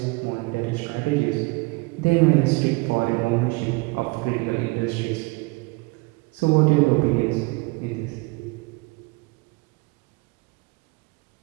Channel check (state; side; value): quieter; left; 25.8 dB